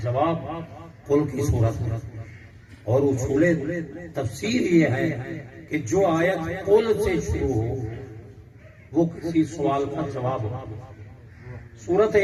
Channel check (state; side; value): identical; both; correlation 1.00